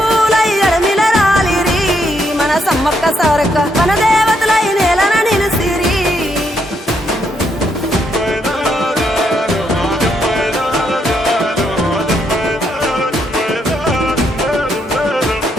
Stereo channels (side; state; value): both; normal; correlation 0.76